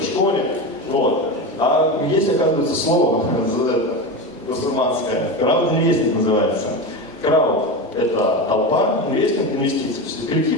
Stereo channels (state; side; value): normal; both; correlation 0.21